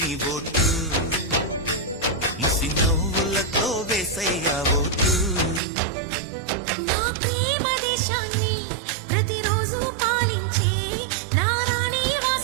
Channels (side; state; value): left; drops out; at 5.6 s